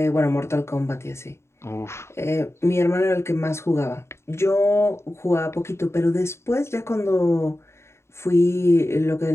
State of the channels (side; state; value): right; late; 0.13 ms